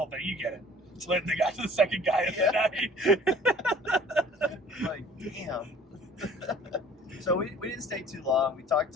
thing. You get it. So then they got to the second guy of the night. Like, damn. So we didn't stay too long. We talked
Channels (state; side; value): normal; both; correlation 0.50